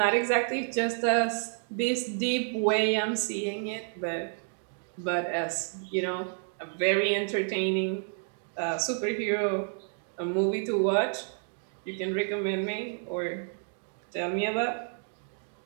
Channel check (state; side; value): silent; left; 58 dB below the other